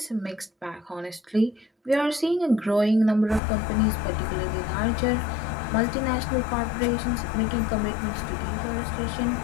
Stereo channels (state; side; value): drops out; right; at 3.4 s